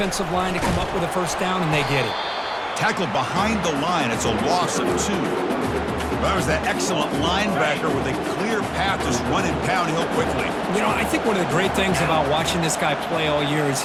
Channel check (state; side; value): identical; both; correlation 1.00